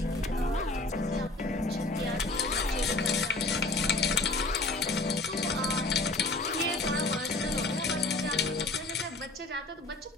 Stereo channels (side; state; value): right; quieter; 3.0 dB